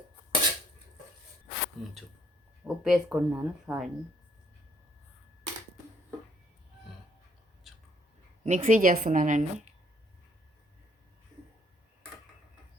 ఉప్పు వేసుకుంటున్నాను, సారీ. మిక్సీ చేస్తున్నానండి.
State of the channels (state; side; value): normal; both; correlation 0.66